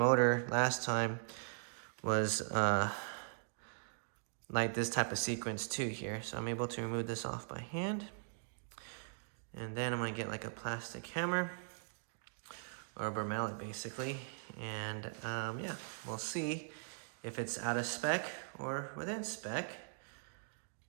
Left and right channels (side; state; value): left; silent; digital silence